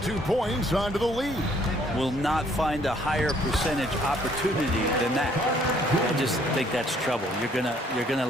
points onto the lead. Will not find a higher percentage opportunity than that. I just think that's trouble. You're gonna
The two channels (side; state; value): both; normal; correlation 0.63